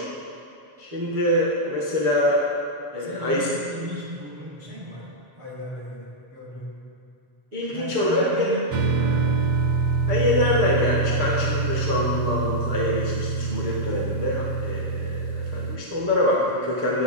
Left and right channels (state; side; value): late; left; 7.4 ms